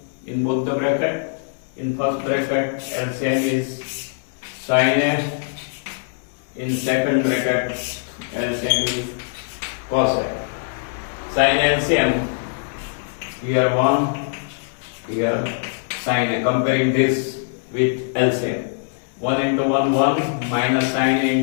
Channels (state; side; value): silent; right; 63 dB below the other